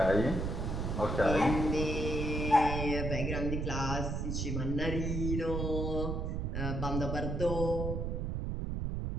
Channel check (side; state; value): right; noise; rumble, 1 dB below the sound